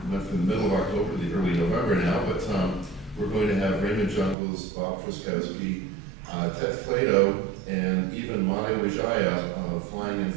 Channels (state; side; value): drops out; left; at 4.4 s